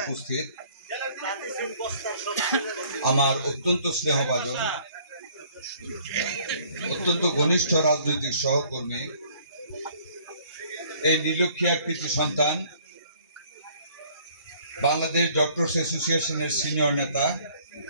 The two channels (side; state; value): both; inverted; correlation -0.58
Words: আমার অত্যন্ত স্নেহভাজন, অত্যন্ত ঘনিষ্ঠ রাজনৈতিক সহকর্মী, এই নীলক্ষিয়া কৃতি সন্তান, বাংলাদেশ ডক্টরস অ্যাসোসিয়েশনের সিনিয়র নেতা,